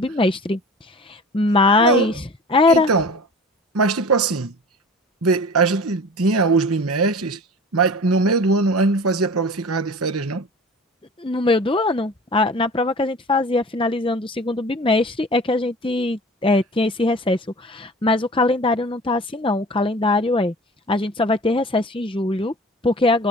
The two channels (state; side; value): normal; both; correlation 0.39